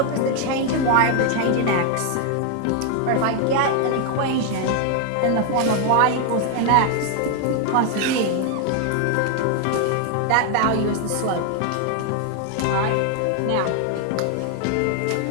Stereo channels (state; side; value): different; both; correlation 0.00